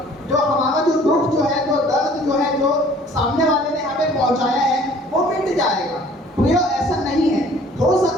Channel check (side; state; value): both; normal; correlation 0.53